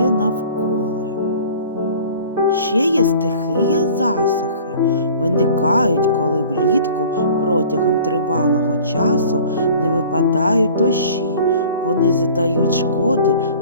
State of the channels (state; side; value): inverted; both; correlation -0.47